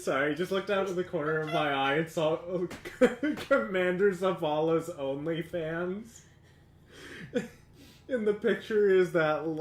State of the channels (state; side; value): identical; both; correlation 1.00